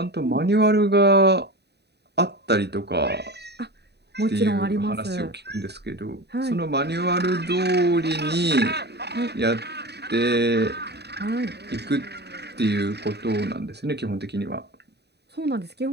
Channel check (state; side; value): late; left; 0.48 ms